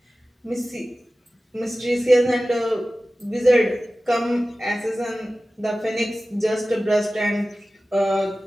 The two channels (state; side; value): normal; both; correlation 0.96